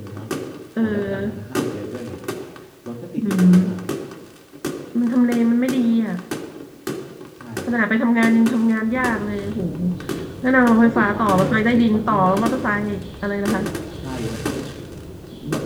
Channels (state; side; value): identical; both; correlation 1.00